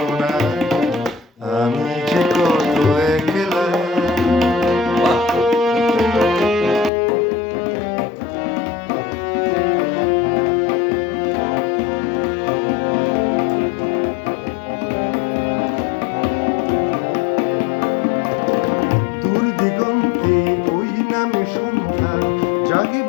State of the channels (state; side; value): drops out; right; at 6.9 s